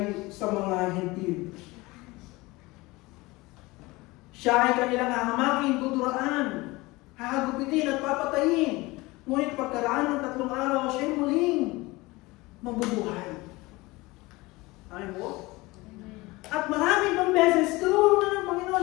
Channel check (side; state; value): right; quieter; 21.9 dB